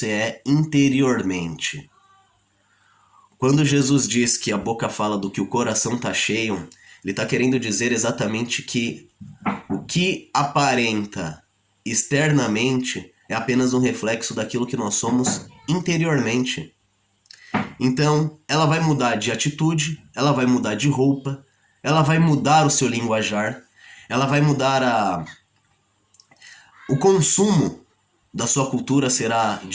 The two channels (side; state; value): both; identical; correlation 1.00